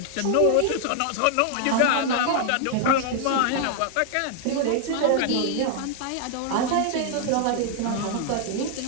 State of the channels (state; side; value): different; both; correlation 0.00